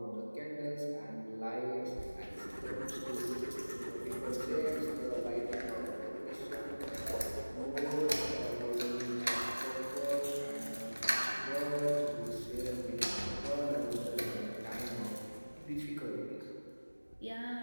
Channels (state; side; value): inverted; both; correlation -1.00